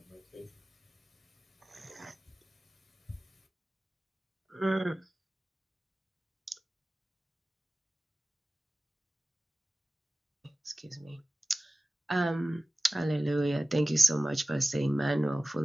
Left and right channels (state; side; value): normal; both; correlation 0.96